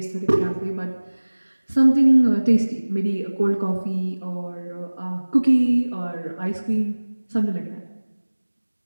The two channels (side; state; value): both; inverted; correlation -1.00